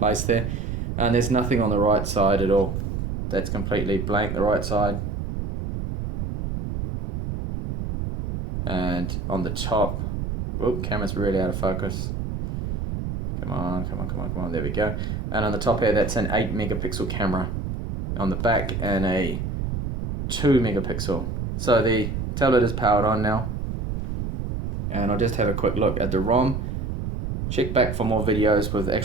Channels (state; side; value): noise; right; rumble, 3 dB below the sound